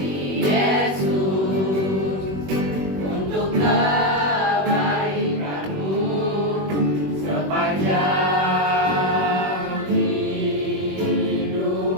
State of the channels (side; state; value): left; late; 21 ms